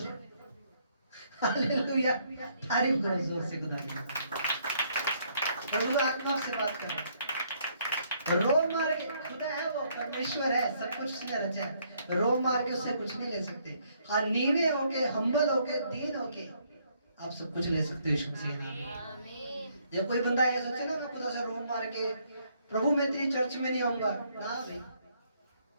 हालेलुया, तारीफ करो जोर से खुदा की। प्रभु आत्मा से बात करो। रोम मार के, खुदा है वो, परमेश्वर है, सब कुछ उसने रचा है। रोम मार के उससे कुछ नहीं ले सकते। हाँ नीवे होके, हम्बल होके, दीन होके आप सब कुछ ले सकते हो यीशु मसीह के नाम में। जब कोई बंदा ये सोचे ना मैं खुदा से रोम मार के प्रभु मैं तेरी चर्च में नहीं आऊंगा, ना भाई।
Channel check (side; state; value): both; inverted; correlation -0.69